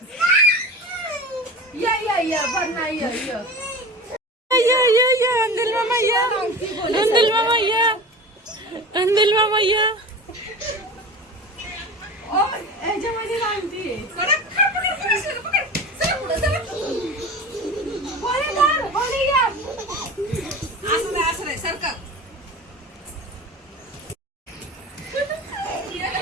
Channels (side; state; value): both; normal; correlation 0.33